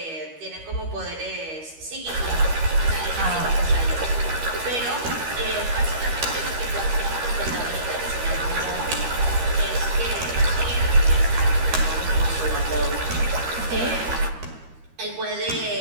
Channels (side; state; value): left; late; 13 ms